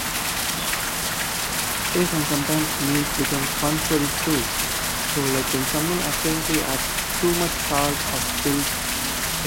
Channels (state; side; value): identical; both; correlation 1.00